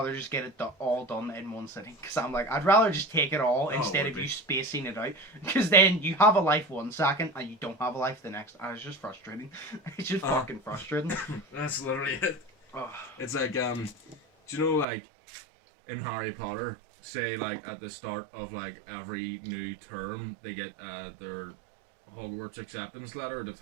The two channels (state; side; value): drops out; left; at 14.9 s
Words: just get it all done in one sitting. Because I'm like, I'd rather just take it all instead of you spacing it out. Because then you have a life one second and you don't have a life the next. And it's just frustrating. It's just fucking frustrating. That's literally it. Oh. It's like, do you know, like, in Harry Potter, say, like, at the start of, like, every new term, they get their Hogwarts acceptance letter to